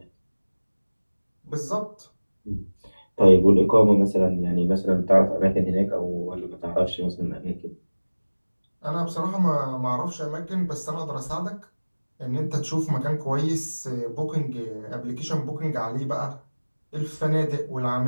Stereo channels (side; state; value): both; inverted; correlation -1.00